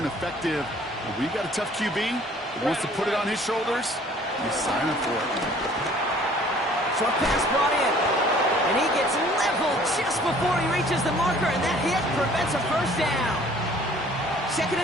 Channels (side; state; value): both; normal; correlation 0.54